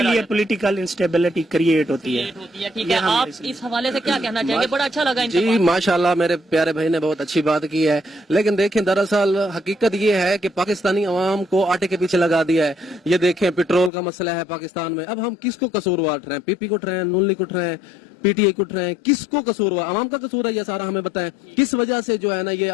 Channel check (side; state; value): right; drops out; at 13.9 s